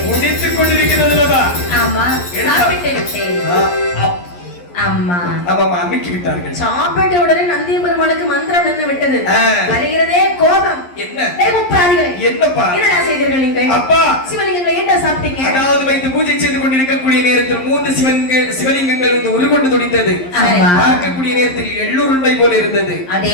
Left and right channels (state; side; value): late; right; 11 ms